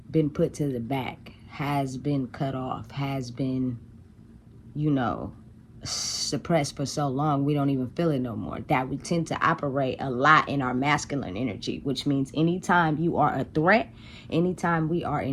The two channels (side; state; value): both; identical; correlation 1.00